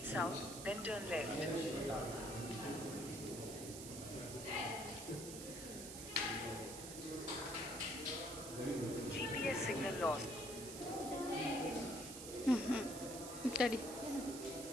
south, then turn left. GPS signal lost. ತಡಿ.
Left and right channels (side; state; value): right; noise; hiss, 9 dB below the sound